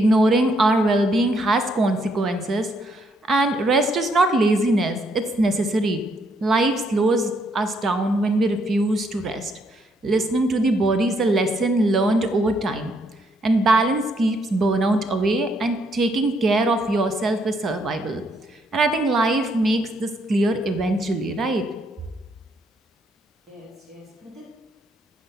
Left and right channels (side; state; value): both; normal; correlation 0.73